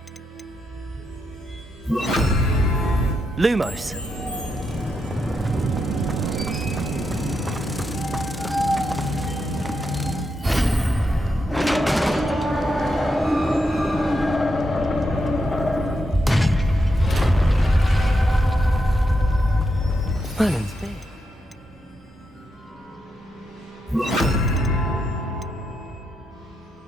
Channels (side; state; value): both; normal; correlation 0.83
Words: Lumos. Merlin's big.